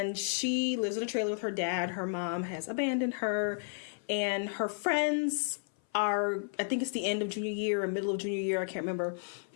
she lives in a trailer with her dad. Her mom has abandoned her, and her friends are, I think it's the end of junior year or middle of junior year, I can't remember,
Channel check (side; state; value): right; silent; 56 dB below the other